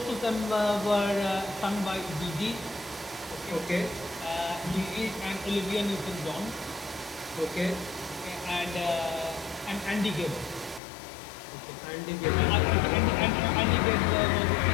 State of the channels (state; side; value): drops out; right; at 10.8 s